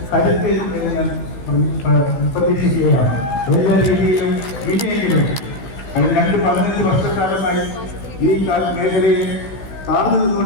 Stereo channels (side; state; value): right; late; 16 ms